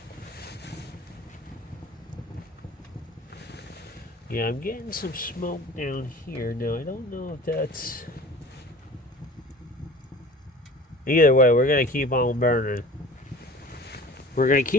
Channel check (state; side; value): normal; both; correlation 0.42